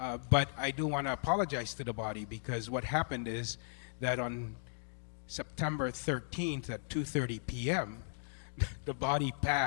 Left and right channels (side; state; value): right; silent; digital silence